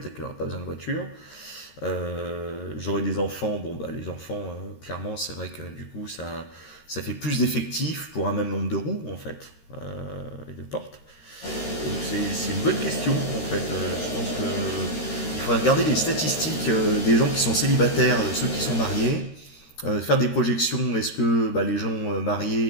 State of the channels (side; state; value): right; late; 13 ms